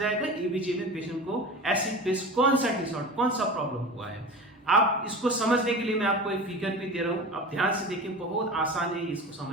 एबीजी में पेशेंट को एसिड बेस कौन सा डिसऑर्डर, कौन सा प्रॉब्लम हुआ है। आप इसको समझने के लिए मैं आपको एक फिगर भी दे रहा हूं, आप ध्यान से देखिए, बहुत आसान है इसको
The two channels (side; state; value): both; normal; correlation 0.32